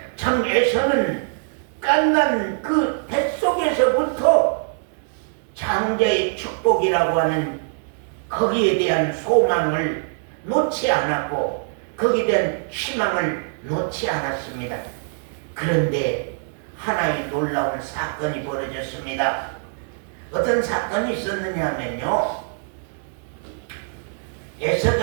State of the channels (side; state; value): left; silent; digital silence